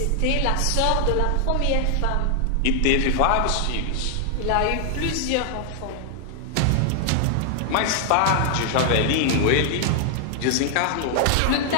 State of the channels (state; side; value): different; both; correlation 0.00